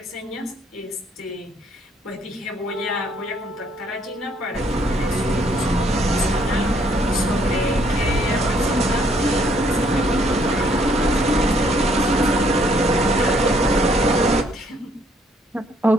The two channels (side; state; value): both; normal; correlation 0.67